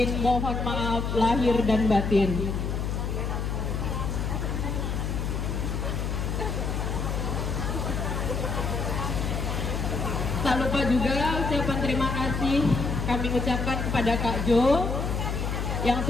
mohon maaf lahir dan batin. Tak lupa juga ucapan terima kasih kami ucapkan kepada Kak Jo yang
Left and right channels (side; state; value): left; noise; hum, 1 dB below the sound